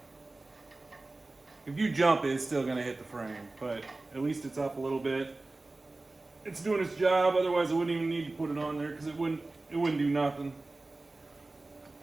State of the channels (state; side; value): quieter; left; 3.2 dB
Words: you jump, it's still gonna hit the frame, but at least it's up a little bit. It's doing its job, otherwise I wouldn't even need to put it on there because it wouldn't do nothing.